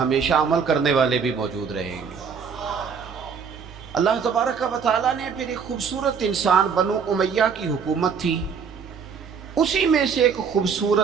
عمل کرنے والے بھی موجود رہیں گے۔ اللہ تبارک و تعالیٰ نے پھر ایک خوبصورت انسان، بنو امیہ کی حکومت تھی، اسی میں سے ایک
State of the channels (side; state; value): left; quieter; 6.3 dB